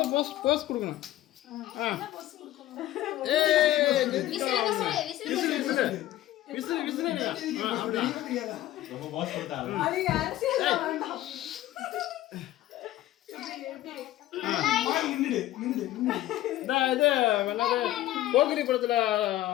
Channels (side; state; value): right; quieter; 14.5 dB